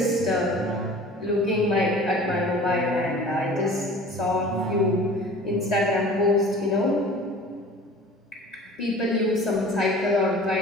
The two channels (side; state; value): both; normal; correlation 0.43